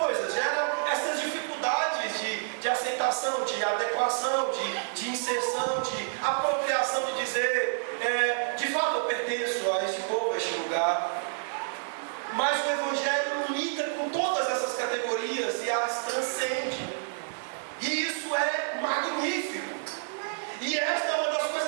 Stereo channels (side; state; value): left; silent; digital silence